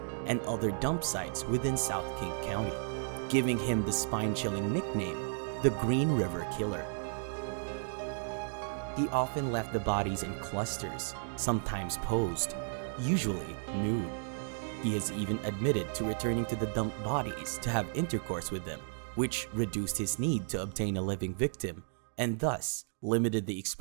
and other dump sites within South King County, giving him the spine-chilling nickname, the Green River Killer. He often left the bodies in clusters, sometimes posed, usually nude. He has even admitted to returning to the dumped bodies to have intercourse with them, which reduced his need to obtain a living victim and thus limited the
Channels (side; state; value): left; silent; digital silence